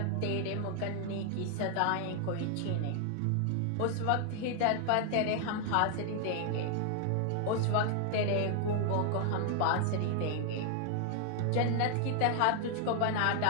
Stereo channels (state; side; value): different; both; correlation 0.00